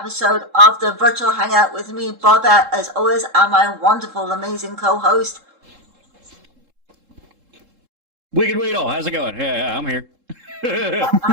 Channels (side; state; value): left; late; 3.7 ms